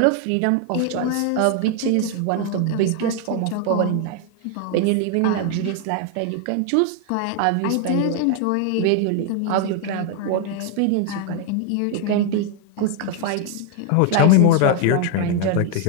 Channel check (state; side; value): different; both; correlation 0.00